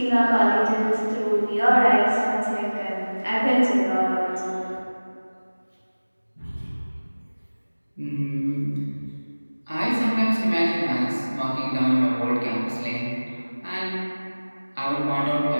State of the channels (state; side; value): inverted; both; correlation -1.00